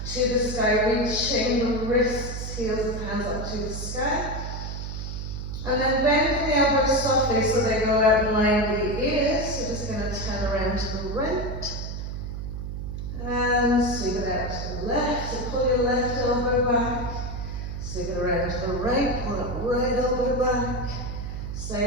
to the sky, reaching the wrists, heels of the hands up to the sky. And then bending the elbows softly so they go out in line with the ears. So just going to turn around to the right. And sweep it out to the left. So pull your left elbow back. Sweep it around to the right, pull that right elbow back.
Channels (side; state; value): right; noise; hum, 6 dB below the sound